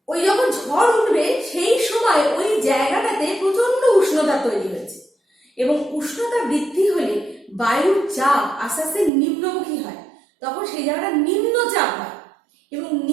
ওই যখন ঝড় উঠবে সেই সময় ওই জায়গাটাতে প্রচন্ড উষ্ণতা তৈরি হয়েছে, এবং উষ্ণতা বৃদ্ধি হলে বায়ুর চাপ আস্তে আস্তে নিম্নমুখী হয়, তখন সেই জায়গাটা নিম্নচাপ হয়। এবং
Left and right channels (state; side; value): drops out; left; at 9.1 s